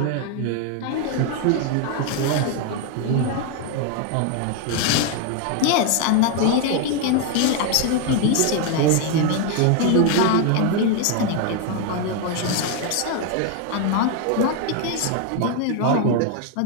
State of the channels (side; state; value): both; different; correlation 0.01